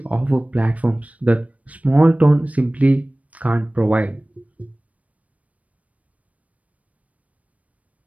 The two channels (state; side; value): late; left; 0.068 ms